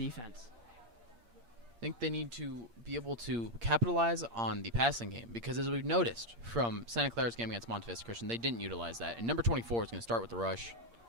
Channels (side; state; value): left; late; 8.6 ms